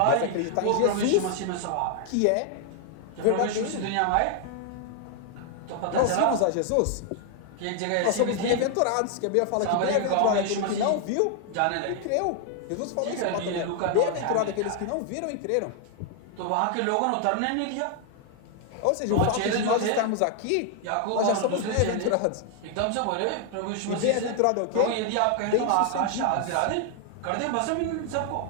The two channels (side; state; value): both; different; correlation 0.00